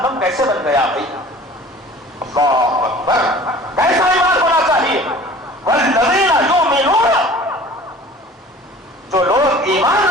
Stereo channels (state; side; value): normal; both; correlation 0.45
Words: کیسے بن گیا بھائی؟ اللہ اکبر، کیسا ایمان ہونا چاہیے؟ والذین یؤمنون، جو لوگ ایمان